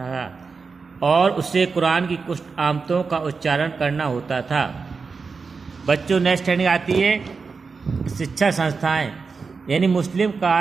और उसे कुरान की कुछ आमतों का उच्चारण करना होता था। बच्चों, नेक्स्ट हेडिंग आती है शिक्षा संस्थाएं, यानी मुस्लिम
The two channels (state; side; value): quieter; left; 4.8 dB